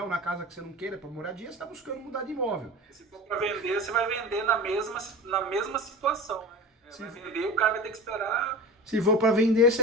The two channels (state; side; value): normal; both; correlation 0.33